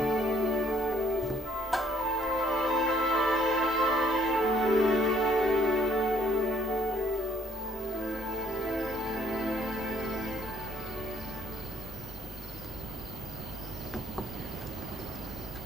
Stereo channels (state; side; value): normal; both; correlation 0.65